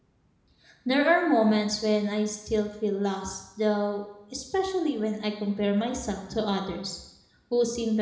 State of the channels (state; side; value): identical; both; correlation 1.00